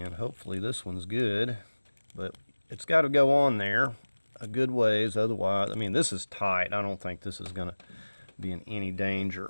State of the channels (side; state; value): both; inverted; correlation -1.00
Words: hopefully this one's good, but it's got to go on there a good ways, otherwise, I mean, this is tight. I don't think this is going to be in any danger